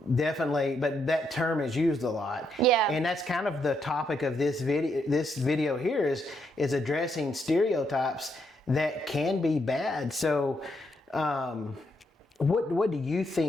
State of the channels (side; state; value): both; normal; correlation 0.77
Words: definitely, but that term is used a lot. Yeah. And that's kind of the topic of this video. This video here is addressing stereotypes that can be bad. So what do you